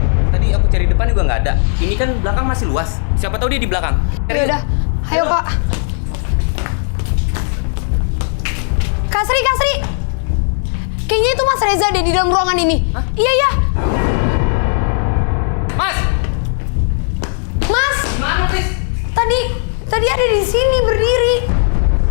Tadi aku cari depan juga nggak ada. Ini kan belakang masih luas. Siapa tahu dia di belakang. Ya udah, ayo Kak. Kak Sri. Kayaknya itu Mas Reza deh di dalam ruangan ini. Hah? Iya. Mas! Mas, Mana, Tris? tadi ada di sini berdiri.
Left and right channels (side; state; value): right; silent; 57 dB below the other